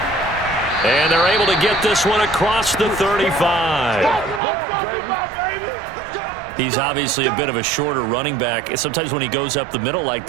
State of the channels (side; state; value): left; drops out; at 4.4 s